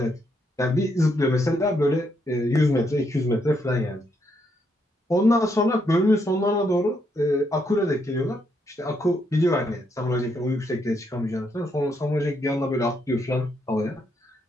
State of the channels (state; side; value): normal; both; correlation 0.76